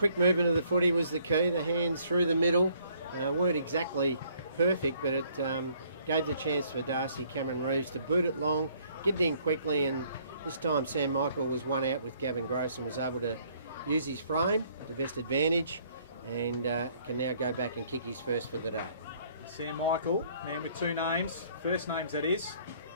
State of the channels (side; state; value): both; inverted; correlation -0.63